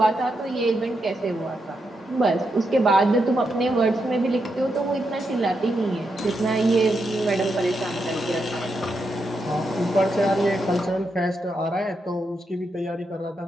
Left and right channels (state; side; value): normal; both; correlation 0.83